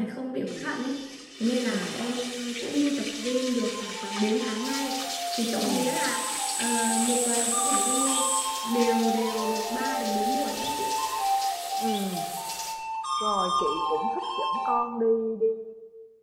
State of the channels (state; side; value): identical; both; correlation 1.00